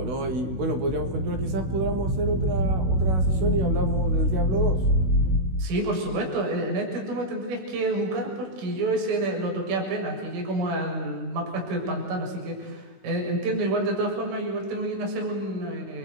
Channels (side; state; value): left; late; 16 ms